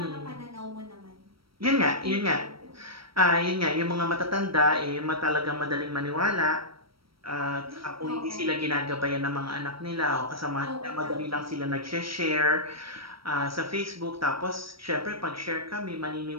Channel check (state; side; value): late; left; 0.75 ms